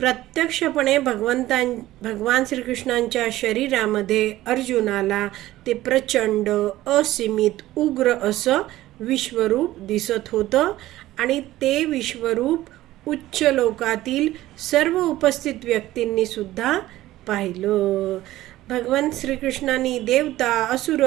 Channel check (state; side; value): quieter; left; 15.7 dB